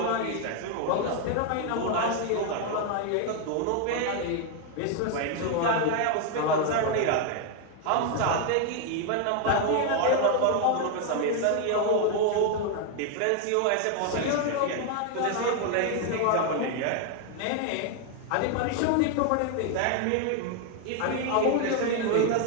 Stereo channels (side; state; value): both; different; correlation 0.01